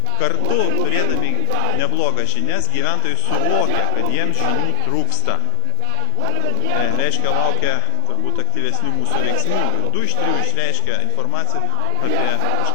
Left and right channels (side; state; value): both; different; correlation 0.00